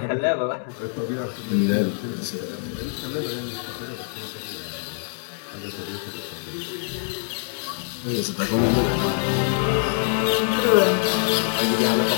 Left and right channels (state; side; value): silent; right; 62 dB below the other